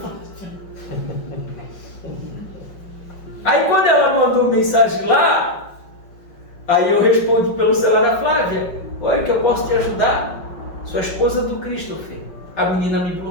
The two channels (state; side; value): late; right; 5.5 ms